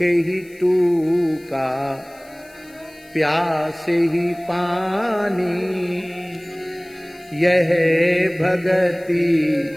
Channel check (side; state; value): left; noise; hiss, 27 dB below the sound